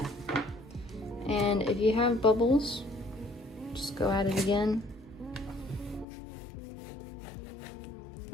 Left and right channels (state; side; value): drops out; right; at 6.1 s